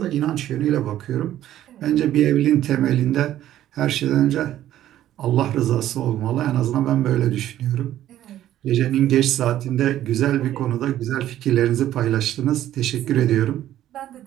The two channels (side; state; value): left; quieter; 12.6 dB